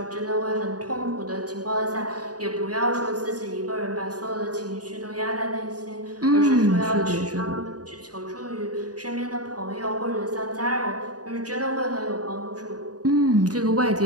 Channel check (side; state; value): left; late; 0.68 ms